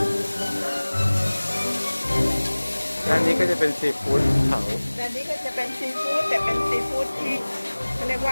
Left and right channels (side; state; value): both; inverted; correlation -1.00